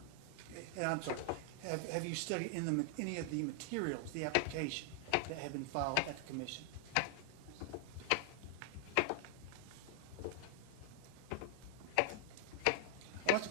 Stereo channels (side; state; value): both; different; correlation 0.00